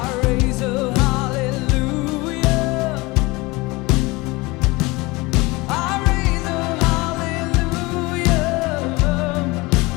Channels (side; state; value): right; quieter; 23.3 dB